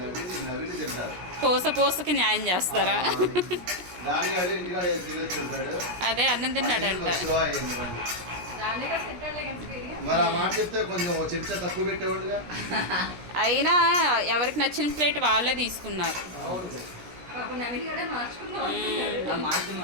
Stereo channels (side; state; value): left; late; 17 ms